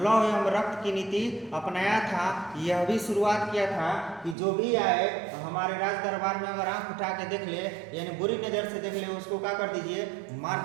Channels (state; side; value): drops out; left; at 4.4 s